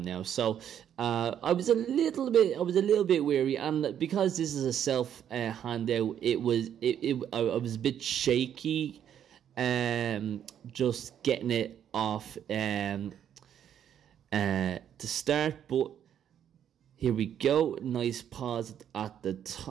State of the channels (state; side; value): quieter; left; 9.5 dB